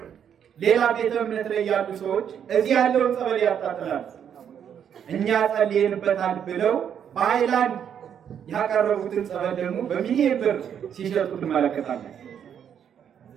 ሌላ ቤተ እምነት ላይ ያሉ ሰዎች እዚህ ያለውን ጸበል ያጣጥላሉ። እኛ ጸልየንበታል ብለው በሃይላንድ ያቀረቡትን ጸበል ደግሞ በሚሊዮን ብር ሲሸጡ ትመለከታለን።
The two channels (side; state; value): left; quieter; 8.6 dB